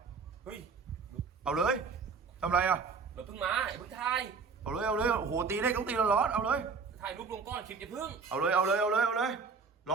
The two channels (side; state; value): left; quieter; 5.0 dB